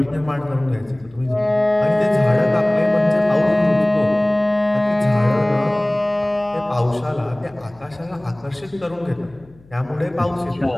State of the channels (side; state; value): left; noise; hum, 27 dB below the sound